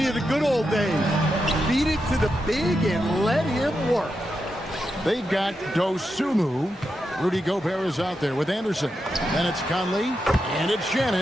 of the good old days. Feed it to the big and let him work. They've got Dosunmu. Rudy Gobert is out there with Anderson. Then it's Conley, and it's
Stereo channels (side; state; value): both; normal; correlation 0.87